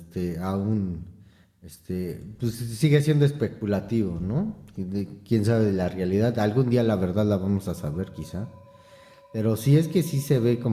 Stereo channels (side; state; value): both; identical; correlation 1.00